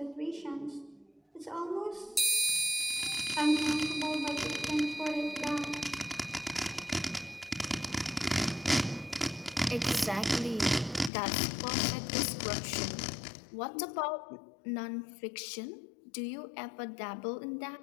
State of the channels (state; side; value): drops out; right; at 11.1 s